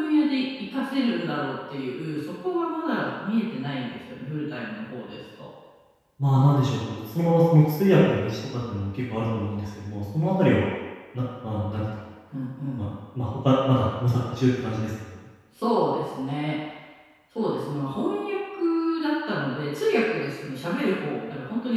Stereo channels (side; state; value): both; identical; correlation 1.00